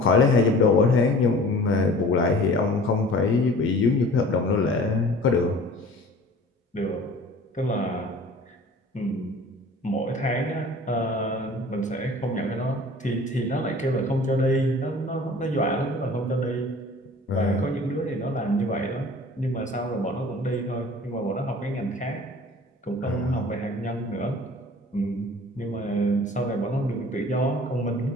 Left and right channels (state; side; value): normal; both; correlation 0.45